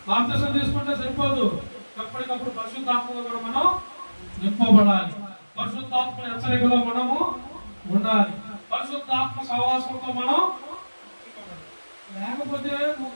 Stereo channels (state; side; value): inverted; both; correlation -1.00